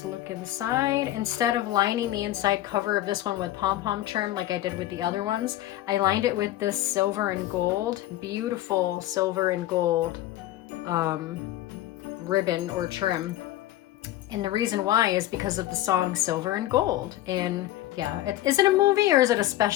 look inside. Instead of lining the inside cover of this one with pom-pom trim like I did with the other ones, I lined it with this silver and gold, beautiful silver and gold ribbon or trim. And the reason why is because of the song Silver and Gold. And yeah, is it a movie or is it a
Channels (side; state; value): right; quieter; 14.6 dB